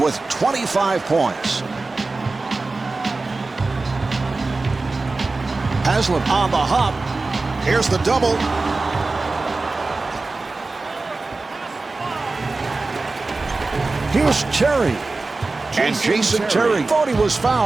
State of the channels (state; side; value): quieter; left; 3.5 dB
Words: 25 points. Haslem on the hop. Here's the double. Here's Terry. And Jason Terry thought he was